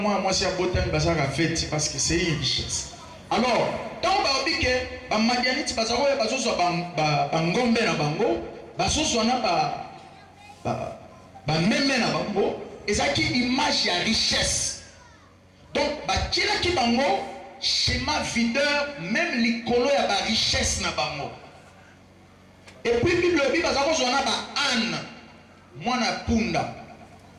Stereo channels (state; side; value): identical; both; correlation 1.00